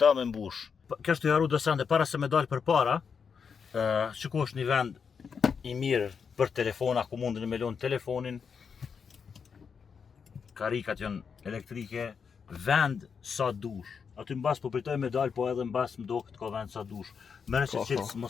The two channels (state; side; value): quieter; right; 6.2 dB